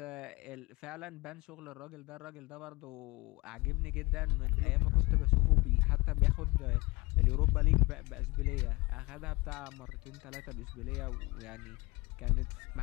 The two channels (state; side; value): quieter; right; 23.9 dB